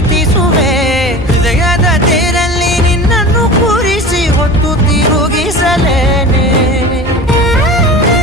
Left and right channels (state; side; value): normal; both; correlation 0.35